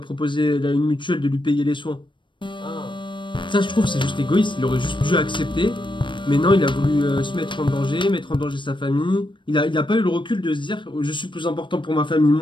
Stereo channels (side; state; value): right; late; 0.23 ms